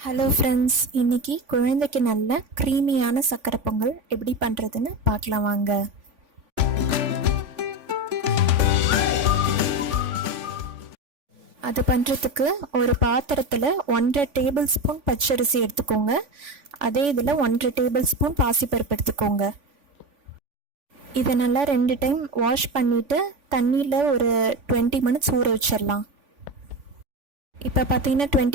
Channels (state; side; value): late; left; 3.5 ms